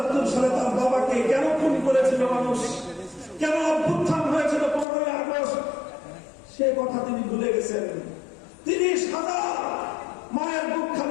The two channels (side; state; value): right; drops out; at 4.9 s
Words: সালে তার বাবাকে কেন খুন করেছিল মানুষ, কেন অভ্যুত্থান হয়েছিল 15ই আগস্ট, সে কথা তিনি ভুলে গেছেন। ৩০,০০০ মায়ের বুক